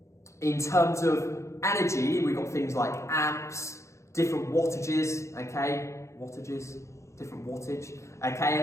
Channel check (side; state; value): right; late; 0.14 ms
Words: in terms of energy, we've got things like amps, different wattages, okay? Different wattage,